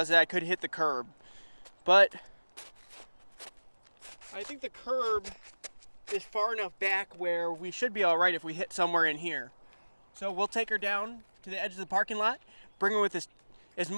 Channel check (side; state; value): both; inverted; correlation -1.00